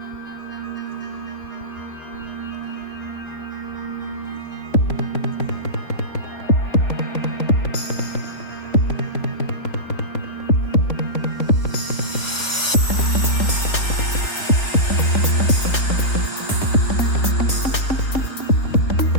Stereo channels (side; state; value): right; late; 3.4 ms